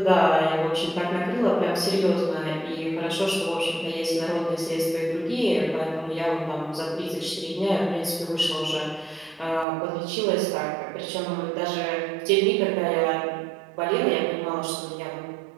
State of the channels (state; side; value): drops out; left; at 9.7 s